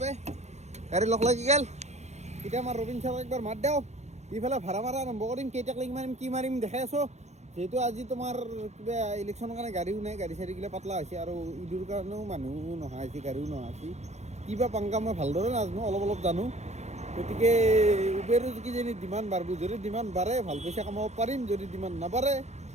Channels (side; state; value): left; late; 0.33 ms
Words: পে গাড়ী লগ লাগি গ'ল এতিয়া আমাৰ ৰবীন ছাৰক একবাৰ মাত দিওঁ ইফালে ভাড়া মাৰা আৰম্ভ কৰিম কেইটাক লাগি মাৰিম কি মাৰিম দেখাই আছোঁ যিহেতু আজি তোমাৰ কিবা ইলেকশ্যনৰ কাৰণে গাড়ীও নাই গাড়ী চাড়ীগিলা পাতলা হৈছে আৰু ঈদৰ কাৰণেও মানুহ নহা হৈছে গাড়ীও নহা হৈছে কিবা পাংকা মই ভালদৰে নাজানো অলপ জানো গতিকে উবেৰো কিজানি ডিমাণ্ড বাঢ়িব যদি ডিমাণ্ড বাঢ়ে ভাল পইচা কামাব পাৰিম যদি ডিমাণ্ড নাবাঢ়ে